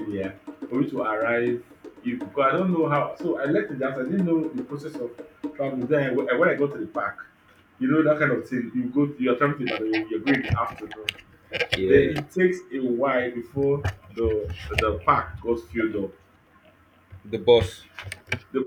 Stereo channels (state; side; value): identical; both; correlation 1.00